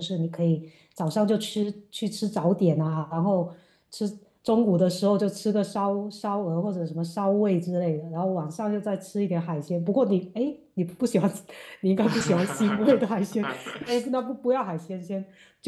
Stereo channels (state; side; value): identical; both; correlation 1.00